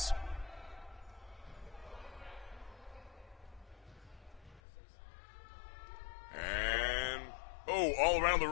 And, all around the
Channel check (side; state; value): right; drops out; at 4.6 s